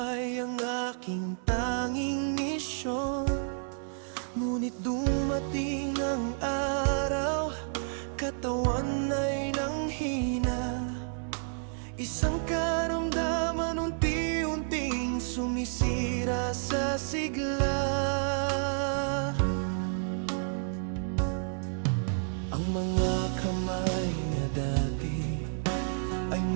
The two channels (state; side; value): silent; left; digital silence